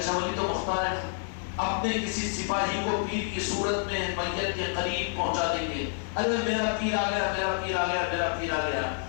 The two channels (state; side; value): silent; right; 55 dB below the other